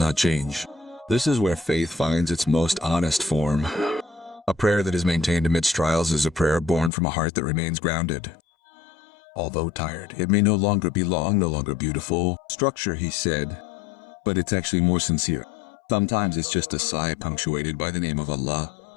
change. This is where faith finds its most honest form. A prayer that is maintained amidst trials is a prayer born from a heart that remains grounded. Although tired, it may no longer be long, no longer beautiful structure, he said, but it's actually more sincere. Sometimes it's just a sigh punctuated by the name of Allah,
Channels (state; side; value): drops out; right; at 6.9 s